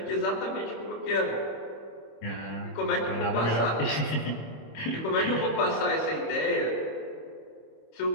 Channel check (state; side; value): late; right; 26 ms